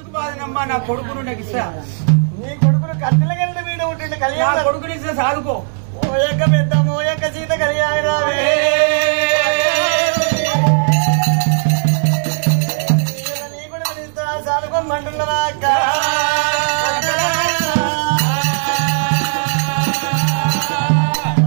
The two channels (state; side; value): silent; left; 62 dB below the other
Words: బాధనమ్మా? నా కొడుకును నాకు ఇస్తా. నీ కొడుకును కట్టెల గంట మీద ఉంటుంది కళ్యాణ కొడుకుని ఇస్తా సాదుకో. ఓ యొక్క పెద్దమ్మ ఓ యొక్క సీత కళ్యాణి రావే. నీ కొడుకుని ఇస్తా సాదుకోమంటున్నావా అక్క?